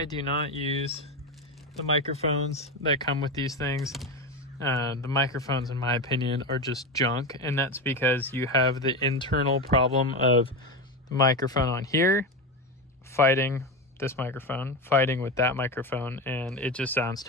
do not use the microphones that come with these things. The microphones, in my opinion, are just junk, and that's because you have the internal problem of the microphone on here fighting this microphone, fighting with that microphone, and it just sounds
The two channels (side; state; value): both; normal; correlation 0.18